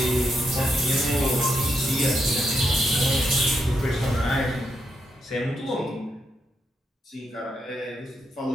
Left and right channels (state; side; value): normal; both; correlation 0.81